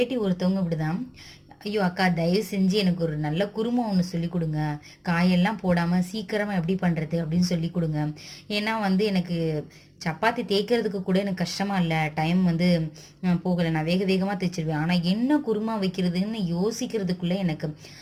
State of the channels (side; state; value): both; identical; correlation 1.00